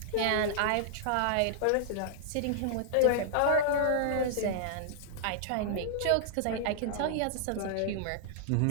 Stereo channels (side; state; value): both; different; correlation -0.01